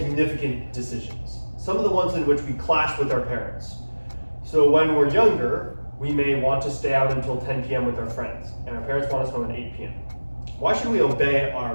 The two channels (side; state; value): both; inverted; correlation -1.00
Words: decisions? Some of the ones in which we clash with our parents. So when we're younger, we may want to stay out until 10 p.m. with our friends, and our parents want us home at 8 p.m. Why should we obey